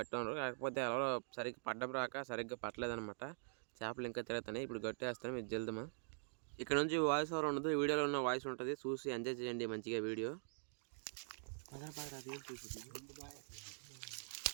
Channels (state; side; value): silent; left; digital silence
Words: ఉండరు. కాకపోతే ఎవరో సరిగ్గా పడ్డం రాక సరిగ్గా పట్టలేదనమాట. చేపలు ఇంకా తిరుగుతున్నాయి. ఇప్పుడు గట్టేస్తాం, ఇది జల్దమా. ఇక్కడ నుంచి వాయిస్ ఓవర్ ఉండదు, వీడియోలో ఉన్న వాయిస్ ఉంటుంది. చూసి ఎంజాయ్ చేయండి మంచిగా వీడియో.